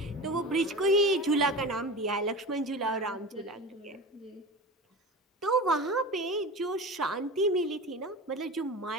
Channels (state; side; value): normal; both; correlation 0.30